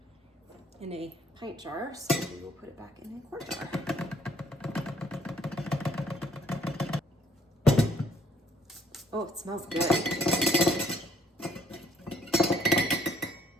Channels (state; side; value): normal; both; correlation 0.63